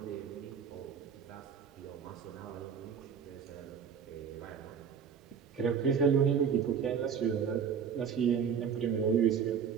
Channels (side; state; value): left; quieter; 7.2 dB